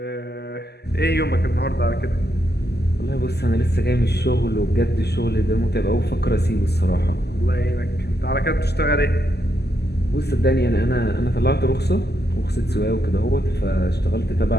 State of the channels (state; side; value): late; right; 0.48 ms